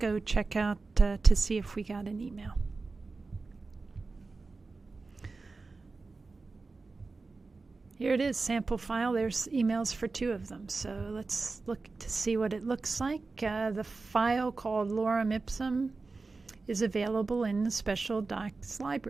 check out to see if we got an email. Here it is, sample file. There's emails for 2 of them. So let's look to see what it looks like. The file called Lorem Ipsum is available in the Special Docs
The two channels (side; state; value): left; quieter; 3.9 dB